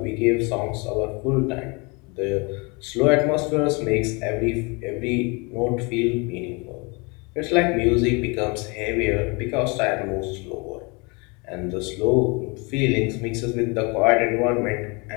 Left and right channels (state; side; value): quieter; right; 29.5 dB